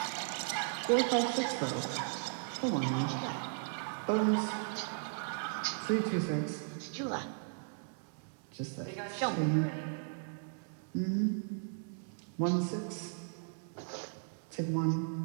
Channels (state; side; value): silent; left; digital silence